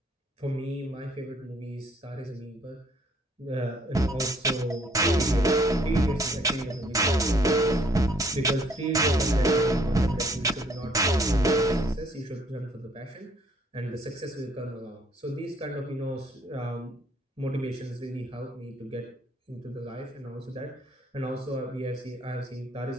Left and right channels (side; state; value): both; normal; correlation 0.64